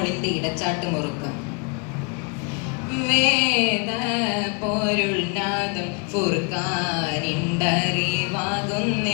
ഇടച്ചാട്ട് മുറുക്കം. വേദ പൊരുൾ നാദം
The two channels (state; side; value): quieter; right; 34.6 dB